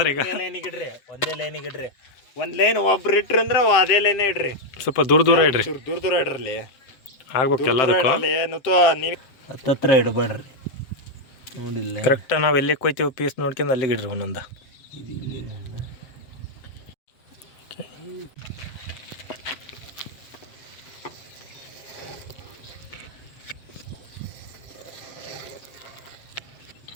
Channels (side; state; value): right; late; 7.8 ms